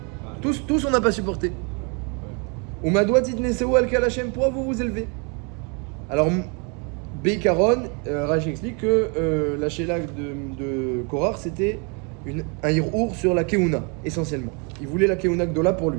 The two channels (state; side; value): quieter; left; 34.3 dB